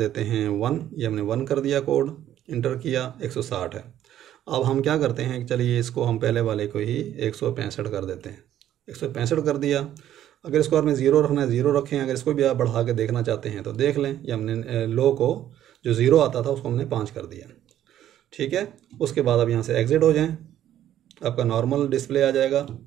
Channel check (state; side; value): quieter; left; 11.7 dB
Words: हैं 1, ये हमने 1 कर दिया, कोड इंटर किया, 160 है। अब हम क्या करते हैं कि चलिए इसको हम पहले वाले को ही 165 कर देते हैं, 165 कर दिया। अगर इसको आपने 0 रखना है 0 रखें, अगर इसको भी आप बढ़ा के देखना चाहते हैं तो देख लें। ये हमने लो को जो 0 आता था उसको हमने 5 कर दिया, ठीक है। उसके बाद अब यहाँ से एग्जिट हो जाएं, आपका नॉर्मल डिस्प्ले आ जाएगा,